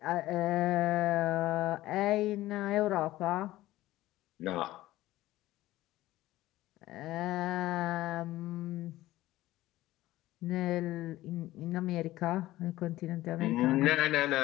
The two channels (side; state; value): right; quieter; 16.3 dB